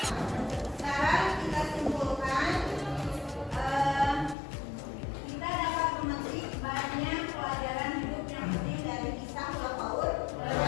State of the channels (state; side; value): drops out; right; at 4.4 s